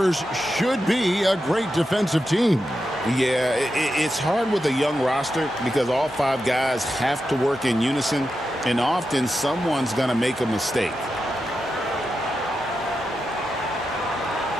should be a great defensive team. Yeah, it's hard with a young roster because all five guys have to work in unison, and often someone's going to make a mistake.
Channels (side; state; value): both; normal; correlation 0.89